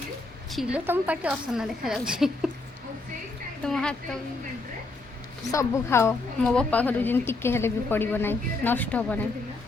छिलो तुम पाटी असना देखा जाऊँ तुम हाथ सबू खाओ मो बापा घर जिन टिके हेले भी पड़ो ना नष्ट हम ना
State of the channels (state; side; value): quieter; right; 3.3 dB